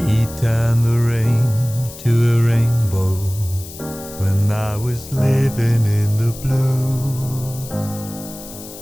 turn the rain to a rainbow when I was living in the blue.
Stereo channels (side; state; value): left; noise; hiss, 15 dB below the sound